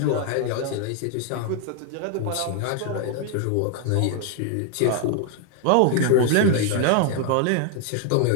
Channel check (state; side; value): different; both; correlation 0.00